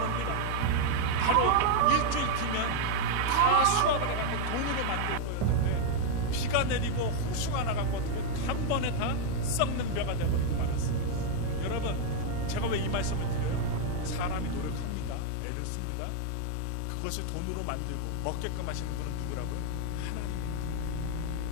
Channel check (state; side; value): different; both; correlation 0.00